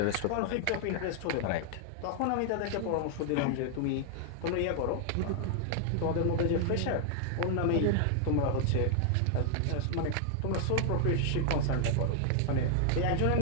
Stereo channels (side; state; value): both; different; correlation 0.00